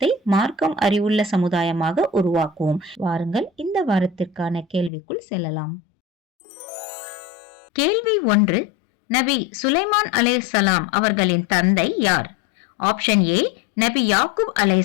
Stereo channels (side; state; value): right; drops out; at 4.9 s